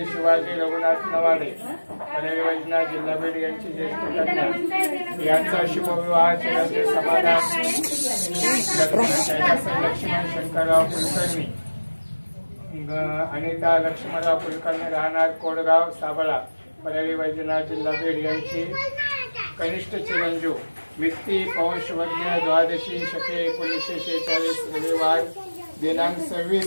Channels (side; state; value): both; inverted; correlation -1.00